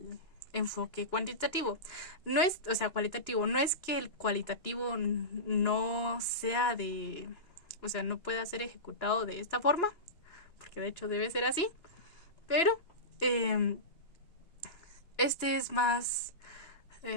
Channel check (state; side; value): late; right; 2.9 ms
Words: enfoque cuantitativo, no es, o sea, cualitativo, no es que el cualitativo no sea de, o sea, no pueda ser ejecutado de esta forma, porque de hecho debe ser así, pero este es más